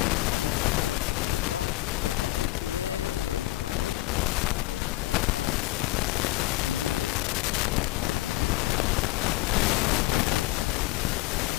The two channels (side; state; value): right; quieter; 18.4 dB